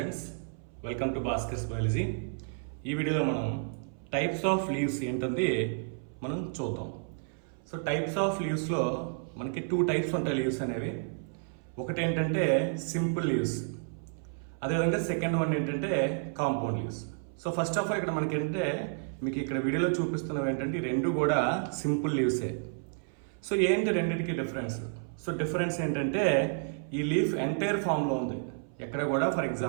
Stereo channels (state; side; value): silent; left; 57 dB below the other